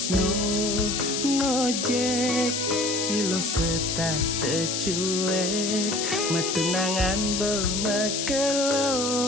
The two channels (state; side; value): noise; left; hiss, 1 dB below the sound